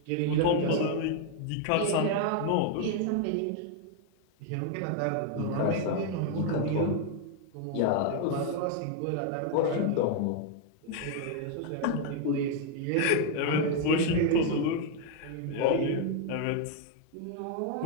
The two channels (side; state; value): both; different; correlation 0.01